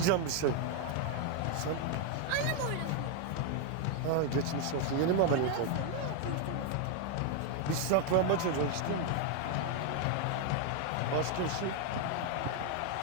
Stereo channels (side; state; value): both; different; correlation 0.01